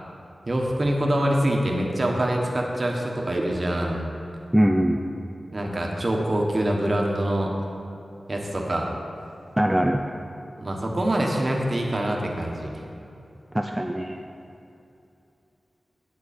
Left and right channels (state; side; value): normal; both; correlation 0.97